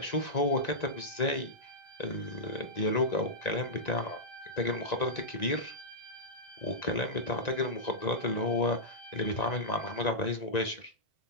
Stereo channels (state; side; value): late; right; 1.9 ms